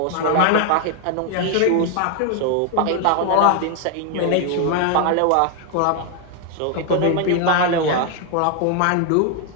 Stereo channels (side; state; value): both; different; correlation 0.00